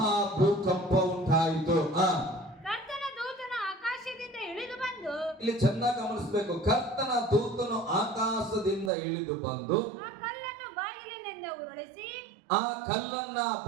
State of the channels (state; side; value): drops out; left; at 8.9 s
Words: ಭೂಕಂಪ ಉಂಟಾಯಿತು. ಇಲ್ಲಿ ಚೆನ್ನಾಗಿ ಗಮನಿಸಬೇಕು. ಕರ್ತನ ದೂತನು ಆಕಾಶದಿಂದ ಇಳಿದು ಬಂದು ಆ ಕಲ್ಲನ್ನ